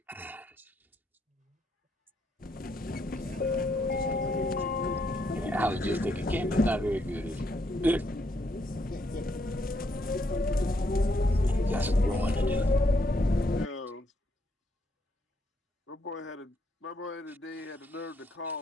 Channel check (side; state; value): both; normal; correlation 0.75